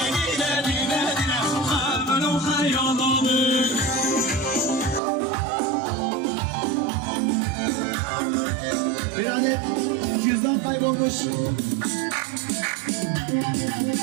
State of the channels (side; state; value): left; drops out; at 5.0 s